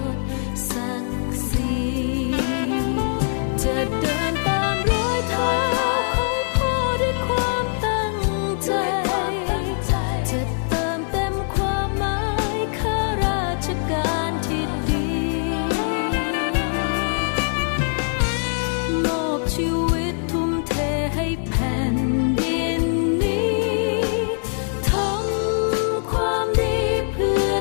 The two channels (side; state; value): right; silent; digital silence